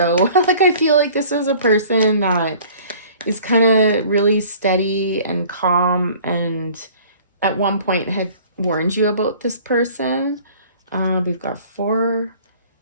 Like, I feel like this is a person that is kind of really steady and calm, and at one point had warned you about this person. We've got four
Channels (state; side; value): inverted; both; correlation -0.50